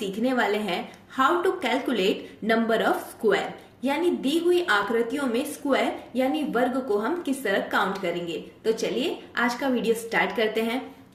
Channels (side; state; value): both; identical; correlation 1.00